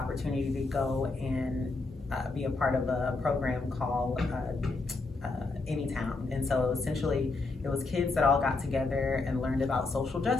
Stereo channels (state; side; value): quieter; right; 3.6 dB